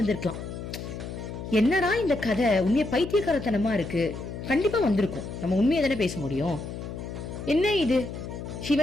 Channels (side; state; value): left; noise; hum, 8 dB below the sound